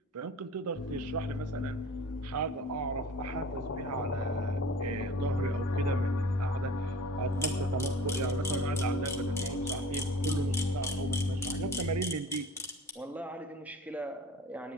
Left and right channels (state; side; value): normal; both; correlation 0.43